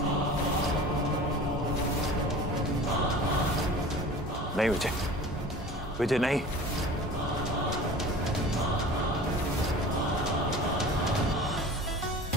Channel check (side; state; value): both; normal; correlation 0.40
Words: नहीं विजय नहीं।